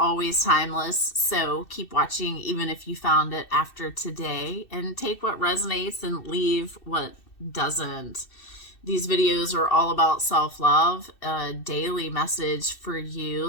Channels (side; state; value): right; late; 2.6 ms